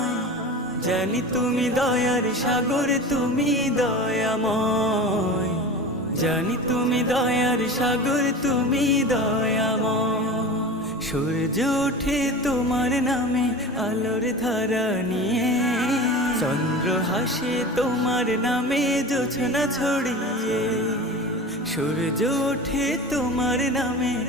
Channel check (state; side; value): normal; both; correlation 0.33